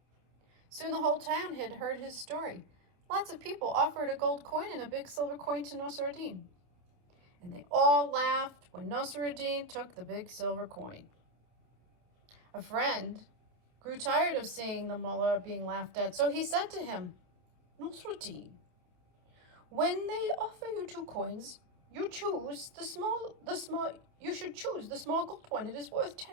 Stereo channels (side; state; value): left; late; 28 ms